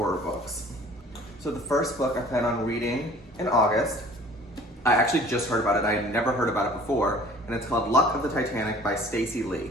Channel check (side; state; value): both; normal; correlation 0.50